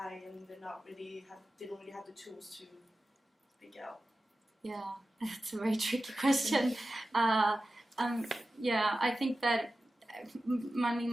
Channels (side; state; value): both; normal; correlation 0.94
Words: and they don't really have the tools to speak out. Yeah, that's a very tricky question. I think that